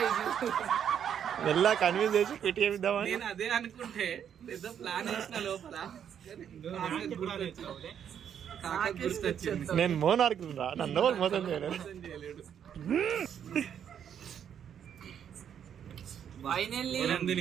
మెల్ల కన్విన్స్ చేసి క్విట్ చేద్దామని. నేను అదే అనుకుంటే పెద్ద ప్లాన్ వేసిన లోపల కాకకు గుర్తొచ్చింది. నేను మోన్ ఆడుకుంటున్నా, నన్ను ఎవరు మోసం చేయలేదు. మోసం చేయలేడు. ఫైనల్లీ 8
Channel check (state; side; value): quieter; left; 8.7 dB